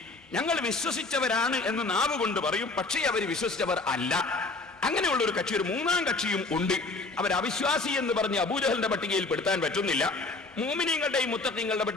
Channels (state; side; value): quieter; right; 3.5 dB